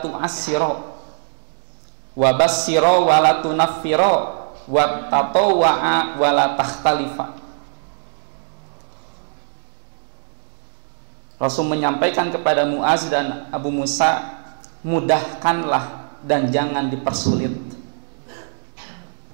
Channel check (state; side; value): silent; left; 65 dB below the other